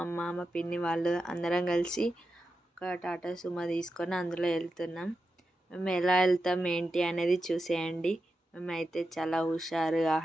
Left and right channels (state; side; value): normal; both; correlation 0.89